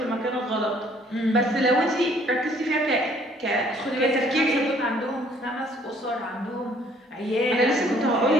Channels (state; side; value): normal; both; correlation 0.60